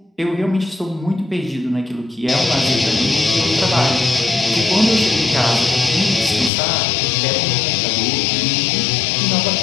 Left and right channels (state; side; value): drops out; right; at 6.5 s